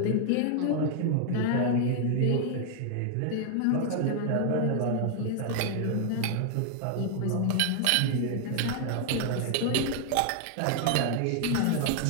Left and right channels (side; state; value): both; different; correlation 0.00